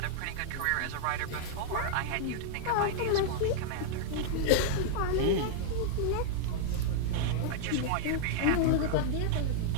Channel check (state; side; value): different; both; correlation -0.01